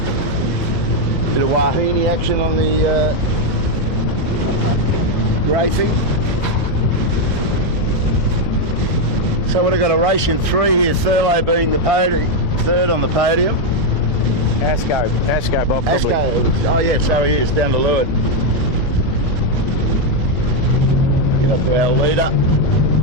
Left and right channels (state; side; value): normal; both; correlation 0.03